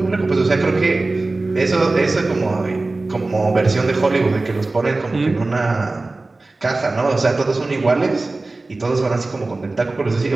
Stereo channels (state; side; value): quieter; left; 3.2 dB